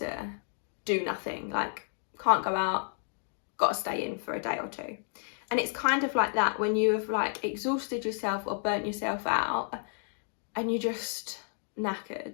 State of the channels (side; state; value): right; silent; 57 dB below the other